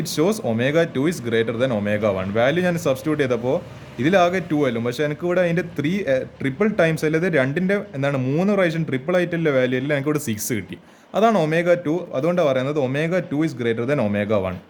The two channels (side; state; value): both; identical; correlation 1.00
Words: shows omega 2 is greater than omega 1. Value ഞാൻ സബ്സ്റ്റിറ്റ്യൂട്ട് ചെയ്തപ്പോൾ ഇതിലാകെ 2 ആയാലും, പക്ഷേ എനിക്ക് ഇവിടെ അതിൻ്റെ 3 ട്രിപ്പിൾ ടൈംസ് അല്ലാതെ 2ൻ്റെ എന്താണ് 3 പ്രാവശ്യം ട്രിപ്പിൾ ആയിട്ടുള്ള വാല്യൂ അല്ല, എനിക്ക് ഇവിടെ 6 കിട്ടി. അതാണ് ഒമേഗ 2. അതുകൊണ്ടാണ് പറയുന്നത് omega 2 is greater than omega 1.